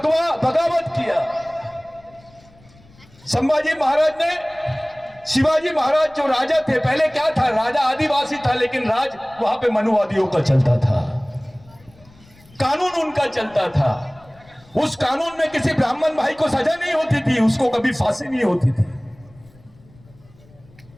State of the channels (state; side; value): noise; left; rumble, 27 dB below the sound